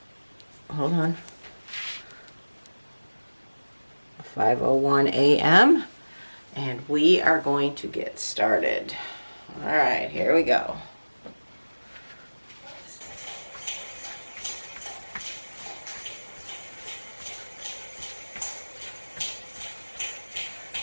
hold on, 5:01 a.m. And we are going to get started. All right, here we go.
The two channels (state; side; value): inverted; both; correlation -1.00